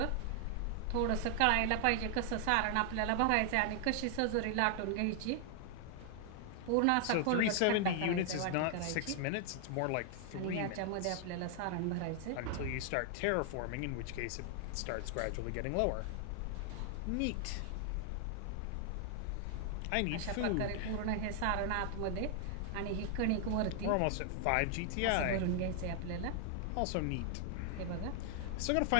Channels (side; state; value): both; different; correlation 0.00